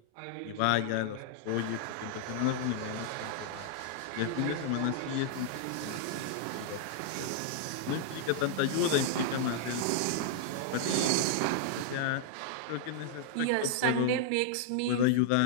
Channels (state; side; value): different; both; correlation -0.01